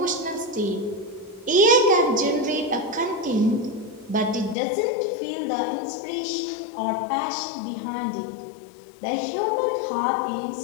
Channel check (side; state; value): right; drops out; at 4.5 s